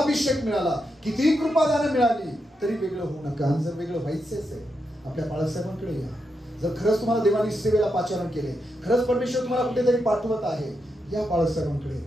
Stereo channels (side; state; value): both; normal; correlation 0.84